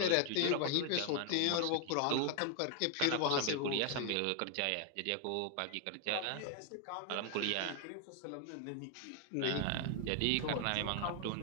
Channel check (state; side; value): different; both; correlation 0.00